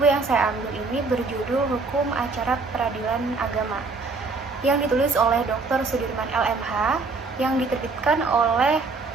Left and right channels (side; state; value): left; quieter; 4.0 dB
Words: yang saya ambil ini berjudul Hukum Acara Peradilan Agama, yang ditulis oleh Dr. Sudirman LMH, yang diterbitkan oleh